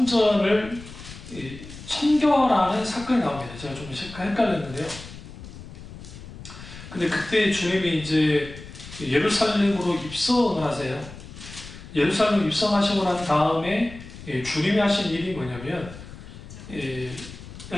청결하는 사건이 나옵니다. 제가 좀 헷갈렸는데요. 근데 그때 주님이 이제 예루살렘으로 입성을 하세요. 예루살렘 입성하시고 난 다음에 주님이 하신 일이 뭐냐면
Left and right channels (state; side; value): noise; left; rumble, 15 dB below the sound